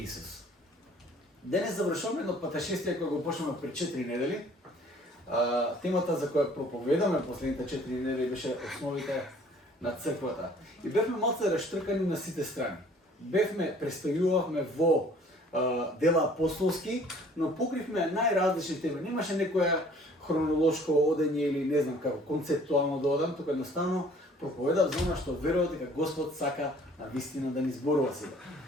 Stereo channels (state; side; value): normal; both; correlation 0.54